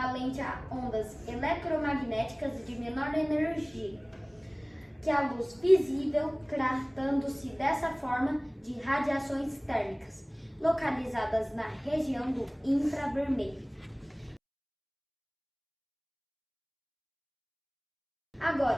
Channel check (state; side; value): identical; both; correlation 1.00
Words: a ondas eletromagnéticas de menor energia que a luz visível, tratando-se dessa forma de radiações térmicas, localizadas na região do infravermelho.